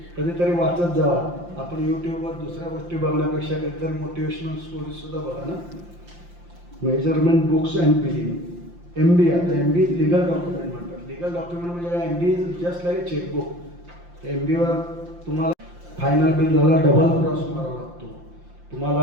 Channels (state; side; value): late; left; 5.8 ms